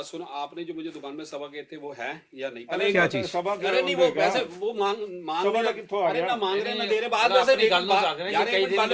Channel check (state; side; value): identical; both; correlation 1.00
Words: सुनो, आपने जो मुझे दुकान में सवा गए थे वो है या नहीं? क्या चीज? सभा के अरे नहीं, वो होंगे क्या? वैसे वो मांग सभा रहे का कित्थों आ अरे गया? ना मांग रहे ना दे रहे, बात मतलब वैसे अपनी गल नु बात- रख रहे हैं, यार ये कई एक दिन बात